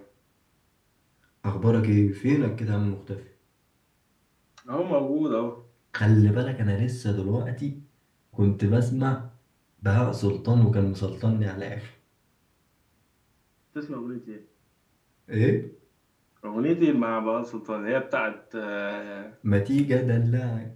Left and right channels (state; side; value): identical; both; correlation 1.00